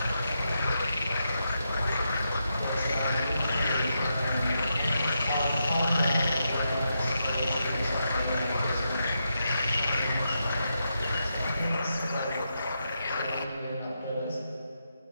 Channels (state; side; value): inverted; both; correlation -0.84